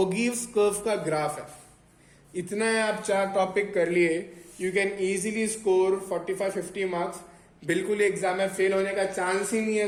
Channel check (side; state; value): both; identical; correlation 1.00